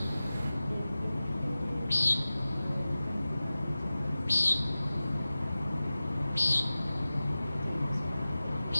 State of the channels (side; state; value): both; inverted; correlation -0.96